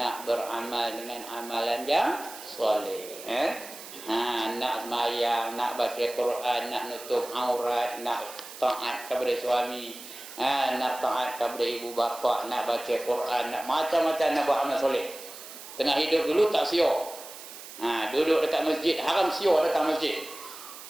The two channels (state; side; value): noise; right; hiss, 14 dB below the sound